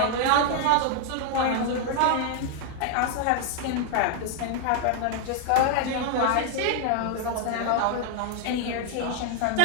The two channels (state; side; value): different; both; correlation 0.00